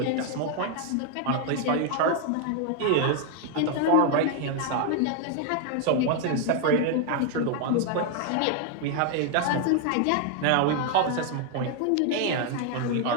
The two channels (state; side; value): different; both; correlation 0.01